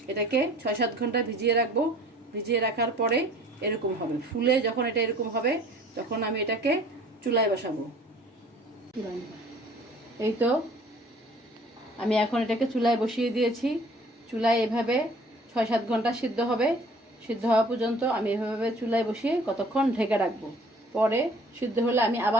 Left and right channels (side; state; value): both; normal; correlation 0.51